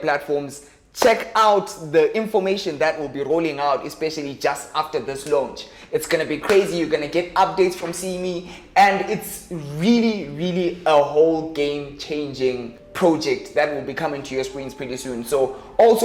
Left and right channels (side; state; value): both; identical; correlation 1.00